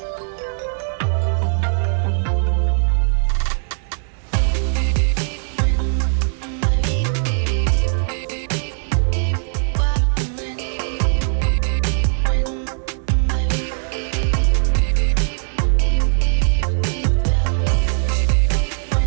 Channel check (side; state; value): left; silent; 66 dB below the other